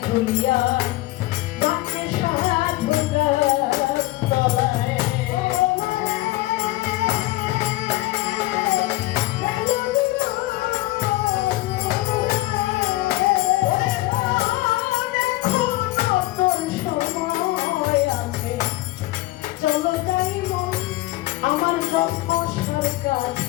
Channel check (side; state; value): right; quieter; 18.5 dB